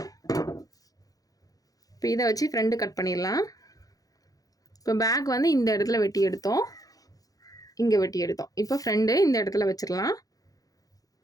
இப்போ இதை வச்சு ஃப்ரண்ட் கட் பண்ணிடலாம். இப்போ பேக் வந்து இந்த இடத்துல வெட்டி எடுத்தோம், இங்கே வெட்டி எடுத்தோம். இப்போ ஃப்ரண்ட் இந்த இடத்துல வச்சிடலாம்.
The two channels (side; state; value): right; late; 0.17 ms